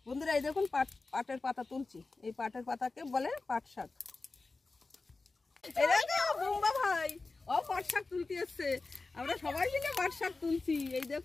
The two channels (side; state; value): right; quieter; 3.7 dB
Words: বন্ধুরা এই দেখুন পাটের পাতা তুলছি। এই পাটের পাতাকে বলে পাট শাক। বোম্বা ভাই ও পাট শাক তুলতে এসছে, আমরা সবাই মিলে পাট শাক তুলছি। এই